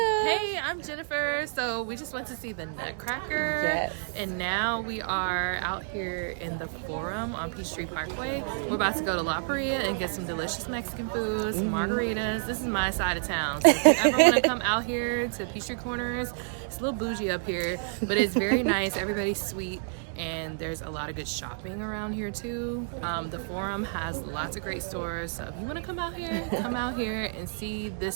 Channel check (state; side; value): silent; left; digital silence